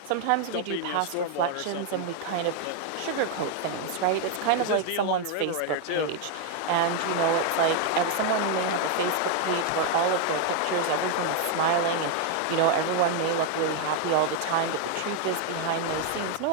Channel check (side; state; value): both; different; correlation 0.00